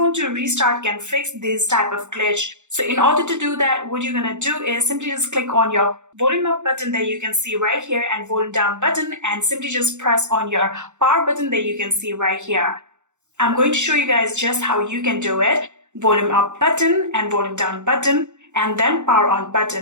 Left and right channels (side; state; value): left; late; 0.84 ms